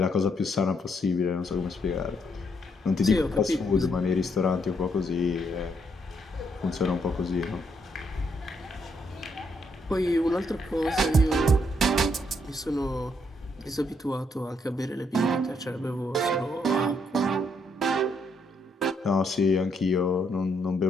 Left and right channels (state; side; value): normal; both; correlation 0.74